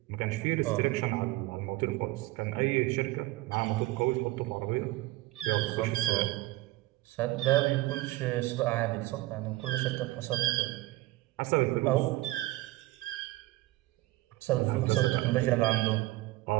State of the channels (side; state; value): left; quieter; 19.1 dB